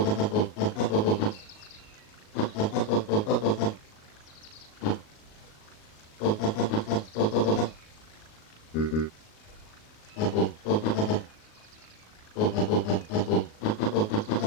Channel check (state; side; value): late; right; 38 ms